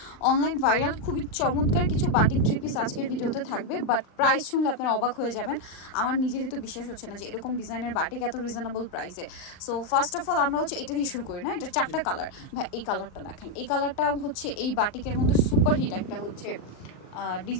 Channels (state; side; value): late; right; 39 ms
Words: অনলাইন ভাইরাল খুবই চমৎকার কিছু বাটিক থ্রি পিস আজকের ভিডিওতে থাকবে, বাট প্রাইস শুনলে আপনারা অবাক হয়ে যাবেন। আমার নিজেরই তো বিশ্বাস হচ্ছে না যে এরকম ডিজাইনের বাটিক এত রিজনেবল প্রাইসে। সো ফার্স্ট অফ অল আমরা হচ্ছে এটা দিয়ে শুরু করি না। এটা চারটা কালার। ভাই এই কালারটা দেখেন, এই কালারটা হচ্ছে এই বাটিকের মধ্যে সুপার হিট একটা হচ্ছে